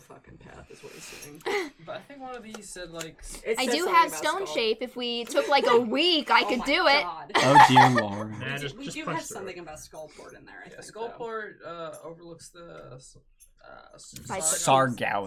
path, is what he's saying. But I think one of these said, like... It I says do something have about stone skull. shape. If we took like a week, I could my do it. God. Oh dear lord. Nah, We just do punch have through something it. about Skullport in there, I Yeah, think. Skullport overlooks the...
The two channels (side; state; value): both; identical; correlation 1.00